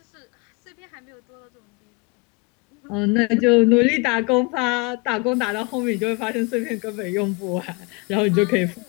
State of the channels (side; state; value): right; quieter; 28.7 dB